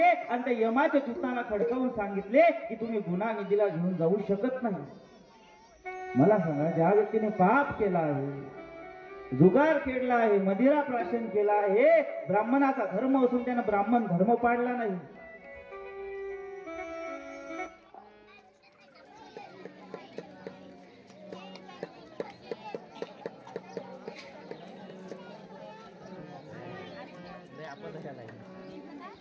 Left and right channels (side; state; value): both; identical; correlation 1.00